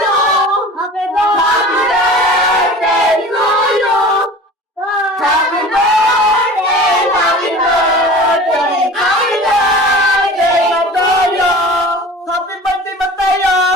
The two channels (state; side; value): normal; both; correlation 0.39